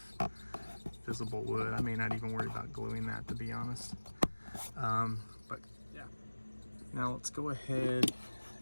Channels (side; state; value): both; inverted; correlation -1.00